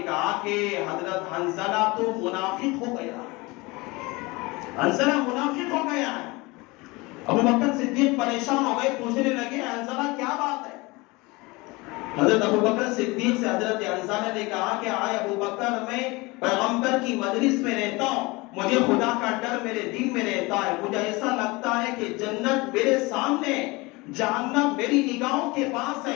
کہا کہ حضرت حنظلہ تو منافق ہو گیا، حنظلہ منافق ہو گیا ہے۔ ابو بکر صدیق پریشان ہو گئے، پوچھنے لگے حنظلہ کیا بات ہے؟ حضرت ابو بکر صدیق سے حضرت حنظلہ نے کہا کہ آئے ابو بکر، میں پیغمبر کی مجلس میں رہتا ہوں، مجھے خدا کا ڈر میرے دل میں رہتا ہے، مجھے ایسا لگتا ہے کہ جنت میرے سامنے، جہنم میری نگاہوں کے پاس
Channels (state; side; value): quieter; right; 23.9 dB